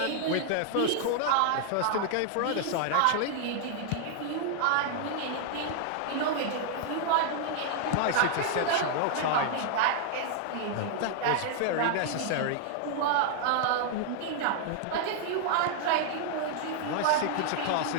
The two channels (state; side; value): different; both; correlation -0.01